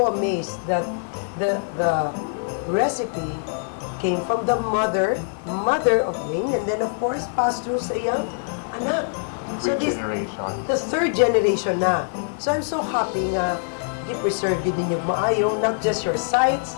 amazed that the recipe came from the mother of Ling, and then of course passed through sa iyang anak. So Generation. the third generation na. So I'm so happy nga i-preserve yun din yung maayo, not just your sites,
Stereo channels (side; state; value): right; silent; digital silence